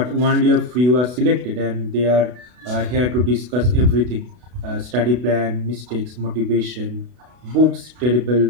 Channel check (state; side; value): late; left; 32 ms